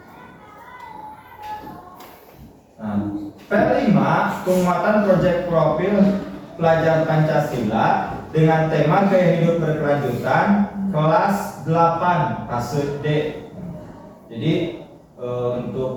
Nah, P5 penguatan proyek profil pelajar Pancasila dengan tema gaya hidup berkelanjutan kelas 8 fase D. Jadi untuk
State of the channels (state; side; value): identical; both; correlation 1.00